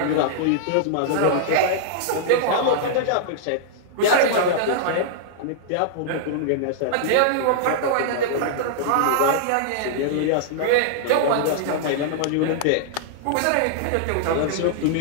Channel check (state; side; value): different; both; correlation -0.01